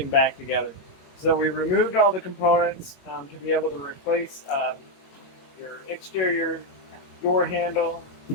back together. So we removed all the components to be able to replace your exterior door handle,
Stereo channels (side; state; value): right; late; 22 ms